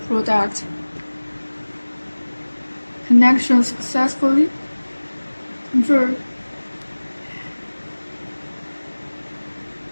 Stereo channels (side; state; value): both; inverted; correlation -1.00